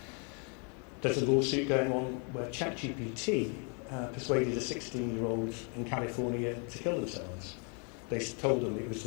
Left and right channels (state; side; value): quieter; right; 38.0 dB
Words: There's a lawsuit going on where ChatGPT persuaded a 16-year-old in California to kill themselves. They told them it was